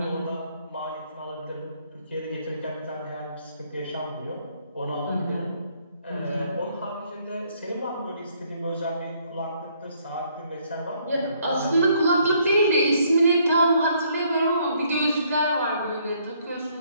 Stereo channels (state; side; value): inverted; both; correlation -0.67